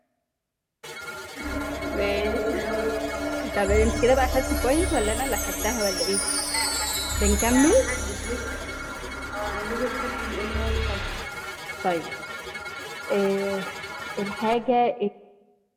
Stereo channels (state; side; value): identical; both; correlation 1.00